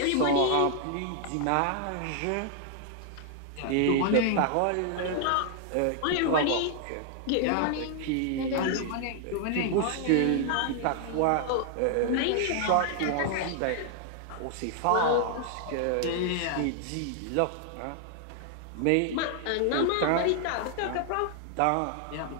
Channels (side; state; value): both; different; correlation 0.00